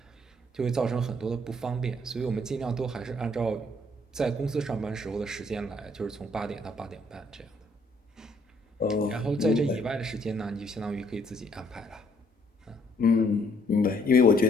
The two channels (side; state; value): both; normal; correlation 0.66